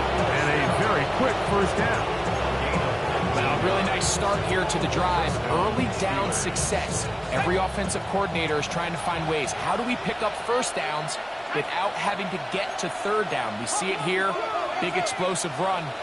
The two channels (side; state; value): both; identical; correlation 1.00